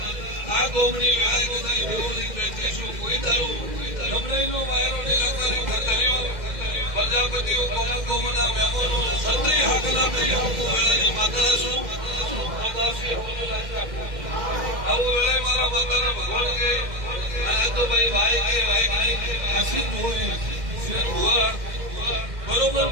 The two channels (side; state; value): left; late; 2.1 ms